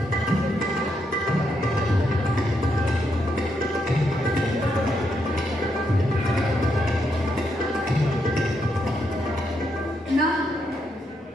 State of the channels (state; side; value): normal; both; correlation 0.79